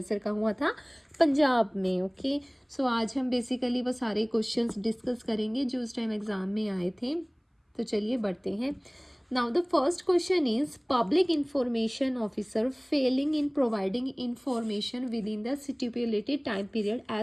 का हुआ था पंजाब में। ओके, सो आज हम बेसिकली वो सारे क्वेश्चंस डिस्कस करेंगे जो उस टाइम एग्जाम में आए थे। तो चलिए बढ़ते हैं। Now the first question is public information officer failing in providing information within the stipulated time period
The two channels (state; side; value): identical; both; correlation 1.00